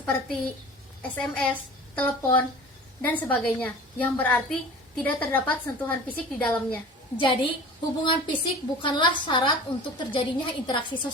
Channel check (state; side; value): normal; both; correlation 0.40